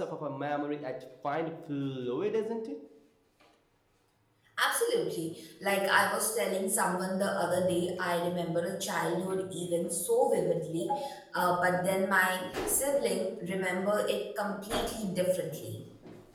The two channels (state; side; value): identical; both; correlation 1.00